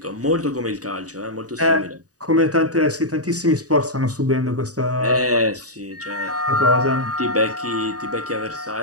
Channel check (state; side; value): late; left; 0.67 ms